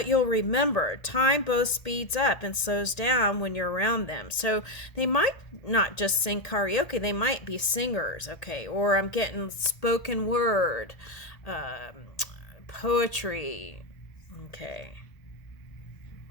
you'll remember, time both speeds up and slows down when you're around them. So they might not just sing karaoke, they might be singers, okay? Or I'm getting spoken word, poetry, okay.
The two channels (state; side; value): late; right; 1.8 ms